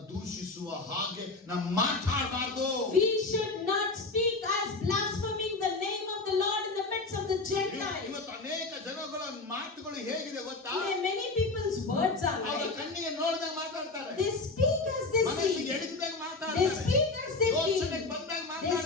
ದೂಷಿಸುವ ಹಾಗೆ ನಾವು ಮಾತಾಡಬಾರ್ದು. We should not speak as blaspheming the name of the Lord in the midst of the Gentiles. ಇವತ್ತು ಅನೇಕ ಜನಗಳ ಮಾತುಗಳು ಹೇಗಿದೆ ಗೊತ್ತಾ? Today many people's words are ಅವರ like, ಕಣ್ಣಿಗೆ ನೋಡಿದಾಗ ಮಾತಾಡ್ತಾರೆ, they speak as they ಮನಸ್ಸಿಗೆ see. ಎಡಗಿದಾಗ They ಮಾತಾಡ್ತಾರೆ, speak as they ಯೋಚನೆಗೆ feel. ಬಂದಾಗ They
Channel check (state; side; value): quieter; right; 3.5 dB